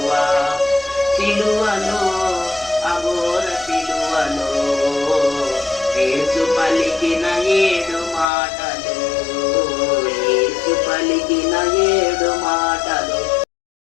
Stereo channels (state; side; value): drops out; right; at 8.2 s